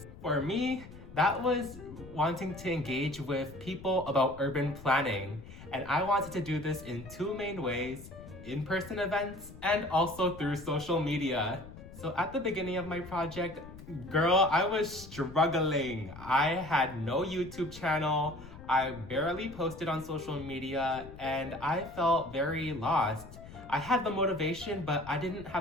For me, that was wanting to engage with people about urban planning. And I wanted to do this in two main ways: in-person events and also through social media. So at the beginning of my project, girl, I was struggling. I had no YouTube channel. I barely posted on social media and I felt very lost. I had the motivation, but I didn't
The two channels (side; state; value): left; noise; rumble, 16 dB below the sound